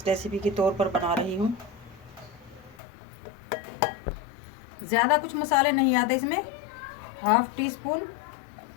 रेसिपी के तौर पर बना रही हूँ। ज़्यादा कुछ मसाले नहीं आते इसमें। 1/2 टीस्पून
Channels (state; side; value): drops out; right; at 2.8 s